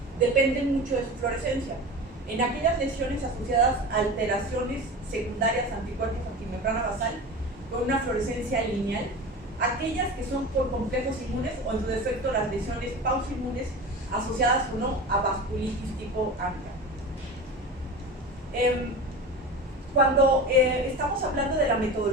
dependen mucho de su fluorescencia. En aquellas lesiones asociadas a alteraciones secundarias anticuerpos antimembrana basal con una fluorescencia lineal, aquellas que son por complejos inmunes o en su defecto las lesiones pausoinmunes asociadas o no a vasculitis tipo ANCA. Cuando estamos hablando de la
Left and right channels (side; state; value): both; normal; correlation 0.30